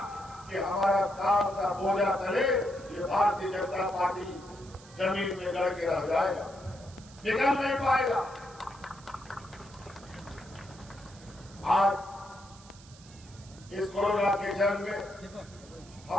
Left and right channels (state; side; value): noise; right; hiss, 22 dB below the sound